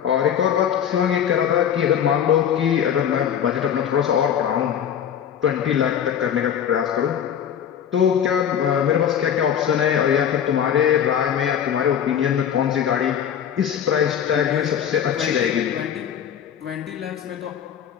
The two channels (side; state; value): right; quieter; 8.9 dB